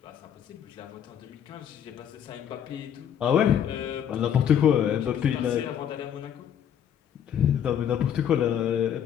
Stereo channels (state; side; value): quieter; right; 9.2 dB